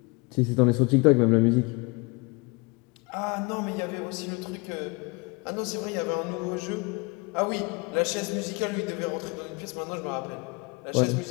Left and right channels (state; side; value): quieter; right; 28.3 dB